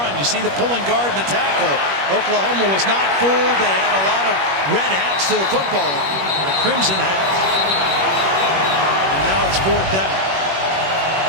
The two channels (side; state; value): left; late; 21 ms